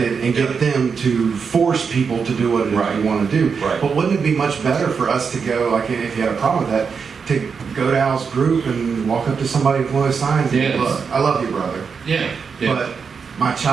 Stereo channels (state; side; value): quieter; left; 5.8 dB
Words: and get them to force people to do what it is we want to do. Right. But wouldn't it be much better for us to go, like if you had a problem with that, to go to Al's group and walk up to somebody with one of those signs and say, look, I love you, brother. Yeah. But my